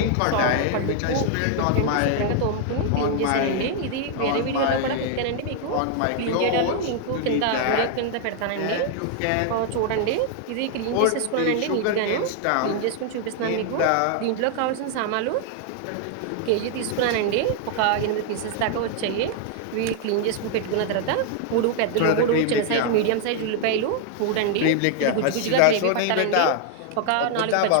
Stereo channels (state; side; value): different; both; correlation 0.00